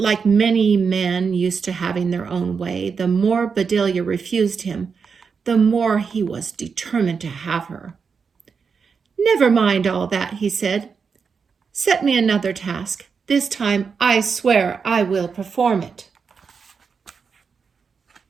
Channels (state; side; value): quieter; left; 5.7 dB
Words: many men used to having their own way, the more Bedelia refused him, the more he was determined to have her. "Never mind all that," he said. "Set me another task. This time I swear I will perform it."